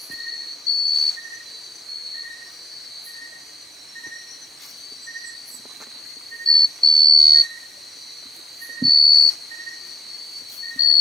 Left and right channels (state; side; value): normal; both; correlation 0.84